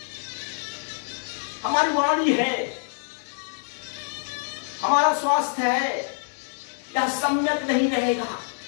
हमारी वाणी है, हमारा स्वास्थ्य है, यह सम्यक नहीं रहेगा,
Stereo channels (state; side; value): silent; right; digital silence